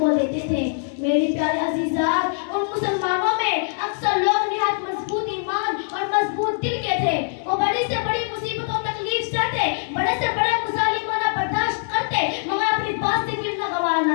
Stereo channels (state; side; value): silent; right; digital silence